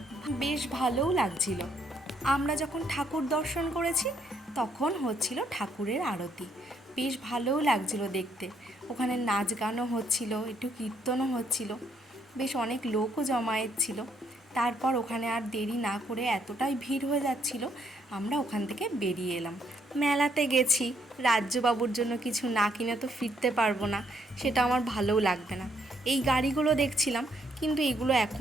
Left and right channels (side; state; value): both; normal; correlation 0.71